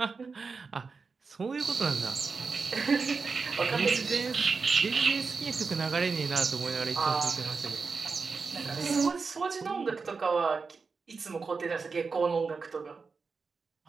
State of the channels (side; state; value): left; quieter; 4.8 dB